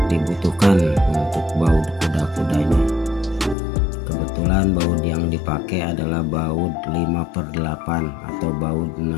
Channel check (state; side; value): drops out; right; at 3.6 s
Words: dibutuhkan untuk baut kuda-kudanya. Kebetulan baut yang dipakai adalah baut 5/8 atau baut